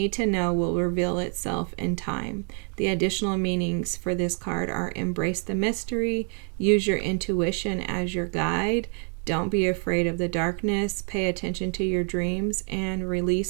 to know will reveal itself in time. The additional meanings for this card are embrace the mystery, use your intuition as your guide, don't be afraid of the darkness, pay attention to your dreams, and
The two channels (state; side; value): quieter; left; 36.6 dB